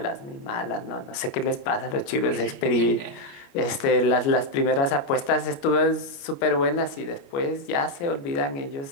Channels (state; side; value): late; right; 29 ms